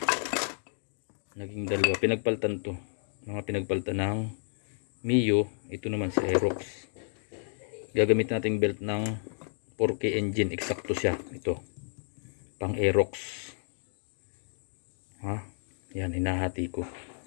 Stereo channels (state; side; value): silent; right; digital silence